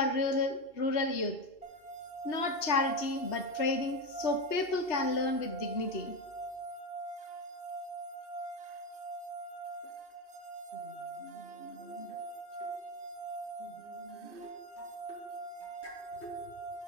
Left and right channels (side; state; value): right; late; 2.7 ms